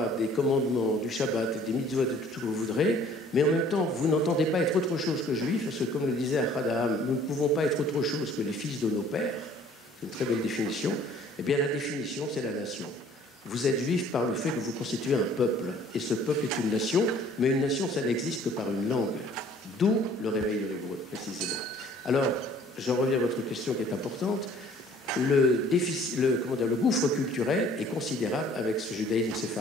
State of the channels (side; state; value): both; normal; correlation 0.55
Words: des commandements, du Shabbat, des mitzvot, de tout ce que vous voudrez, mais en même temps, vous n'entendez pas être autre chose que juif, parce que, comme le disait Ahad Haham, nous ne pouvons pas être autre chose que les fils de nos pères, c'est une très belle définition, eh bien la définition, c'est la nation. Vous êtes juif par le fait que vous constituez un peuple, et ce peuple est une nation, mais une nation, ça n'existe que par une langue, d'où le réveil de l'hébreu, précisément. Alors, j'en reviens à votre question qui est importante. Le gouffre culturel est considérable avec ce judaïsme